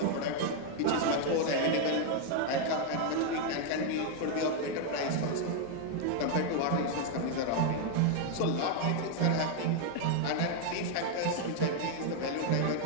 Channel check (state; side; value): different; both; correlation 0.00